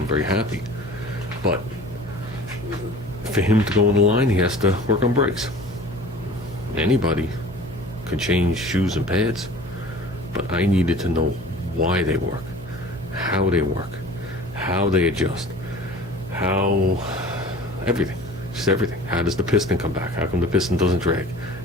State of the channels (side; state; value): left; noise; hum, 17 dB below the sound